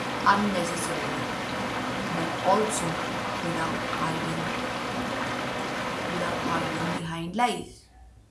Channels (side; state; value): both; identical; correlation 1.00